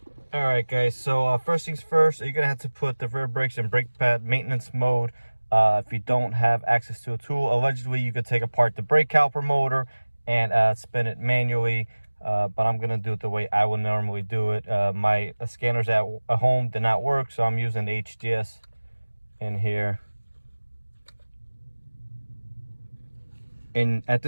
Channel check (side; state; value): both; inverted; correlation -1.00